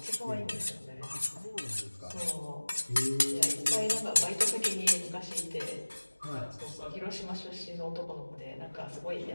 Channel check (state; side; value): inverted; both; correlation -1.00